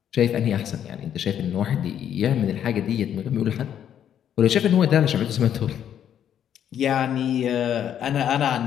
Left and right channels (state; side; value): quieter; right; 9.7 dB